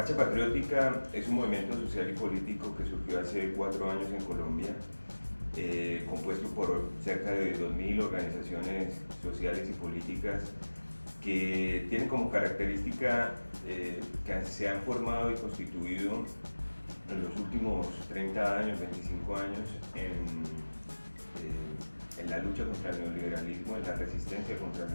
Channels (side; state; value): both; inverted; correlation -1.00